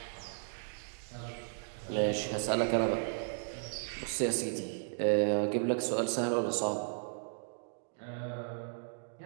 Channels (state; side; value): silent; left; digital silence